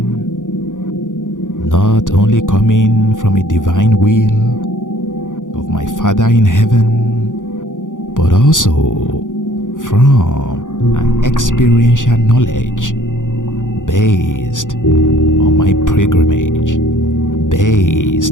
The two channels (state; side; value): late; right; 0.87 ms